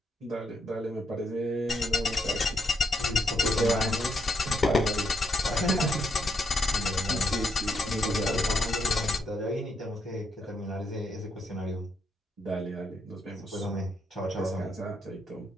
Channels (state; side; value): normal; both; correlation 0.78